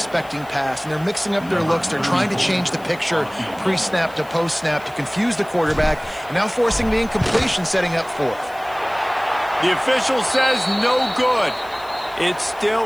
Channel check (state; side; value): noise; left; hiss, 24 dB below the sound